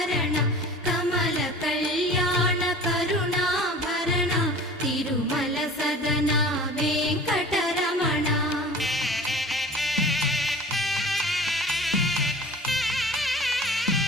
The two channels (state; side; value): normal; both; correlation 0.42